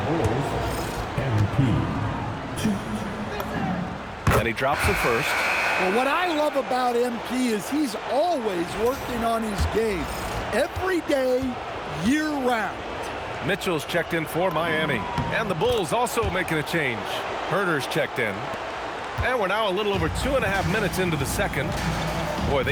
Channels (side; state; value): both; identical; correlation 1.00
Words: And he drops it first. Well, what I love about MP is he's always working on his game. Every day, year-round. Mitchell's checked in for Miami. And the Bulls also making a change. Herter's checked in. And we're now a little over 2.5 minutes into the second. Boy,